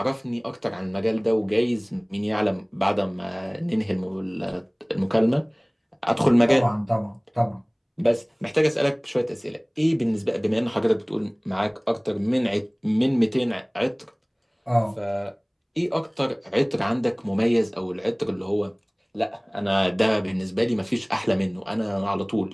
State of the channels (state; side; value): identical; both; correlation 1.00